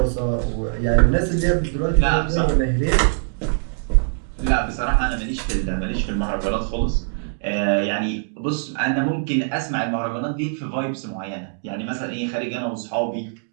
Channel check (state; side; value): silent; left; digital silence